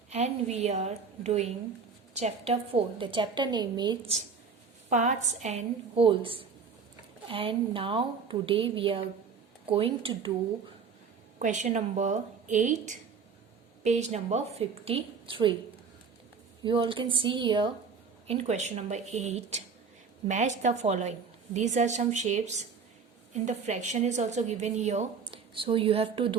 and we are doing chapter 4. The chapter name is parts and wholes. And now today we are going to do question number 8, page number 53. You all can see here in question number 8, match the following. These are some shapes. In the fraction is also given here, so you have to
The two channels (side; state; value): left; quieter; 5.6 dB